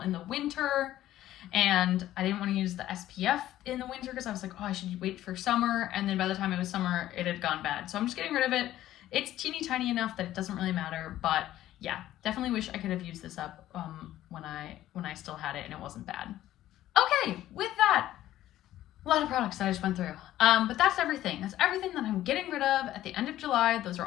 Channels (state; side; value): quieter; right; 13.7 dB